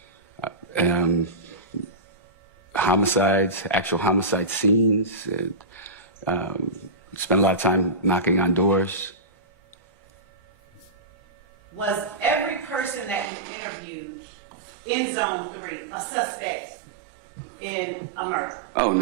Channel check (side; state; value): left; drops out; at 13.3 s